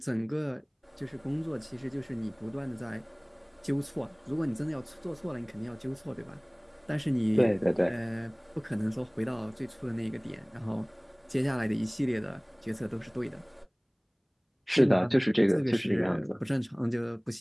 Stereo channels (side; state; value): both; identical; correlation 1.00